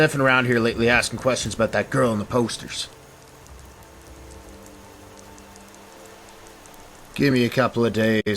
around here lately asking questions about that girl in the posters. Give me a couple of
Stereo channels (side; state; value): both; identical; correlation 1.00